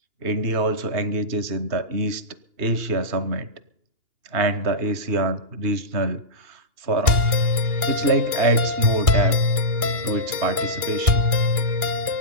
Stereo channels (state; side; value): late; left; 2.8 ms